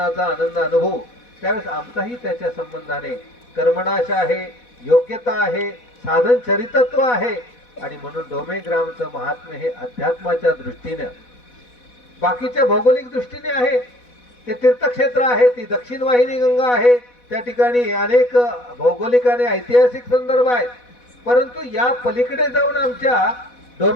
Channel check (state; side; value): late; right; 4.1 ms